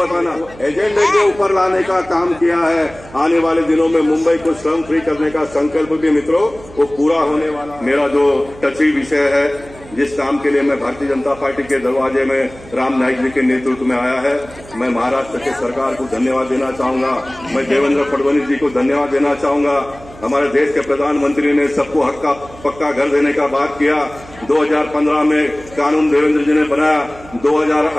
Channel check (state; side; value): noise; right; hum, 20 dB below the sound